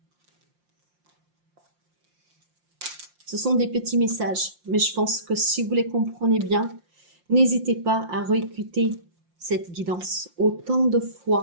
Ce sont des petits messages, mais je pense que si vous les comprenez bien, n'hésitez pas à réécouter cette guidance autant de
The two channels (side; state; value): left; late; 5.7 ms